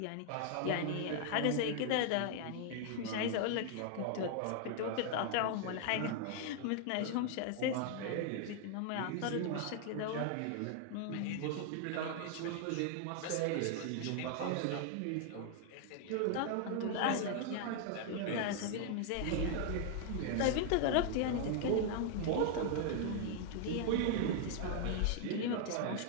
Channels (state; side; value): different; both; correlation 0.00